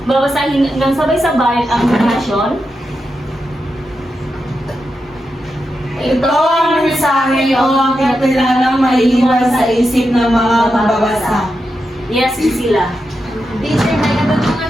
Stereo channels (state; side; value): normal; both; correlation 0.87